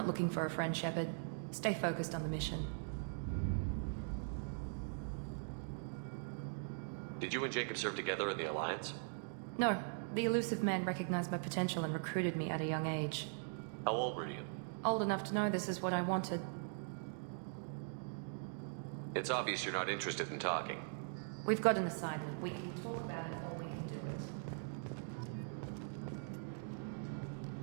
looking for a friend, Shepard. Stay focused on the mission. Did you and Jacob serve together in the Alliance? No. The elusive man recognized my potential and recruited me at a young age. How old were you? Old enough to know this is what I wanted. It's obvious you're not interested in talking. We've got an assignment. We can talk about it or we can do it.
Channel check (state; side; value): silent; left; digital silence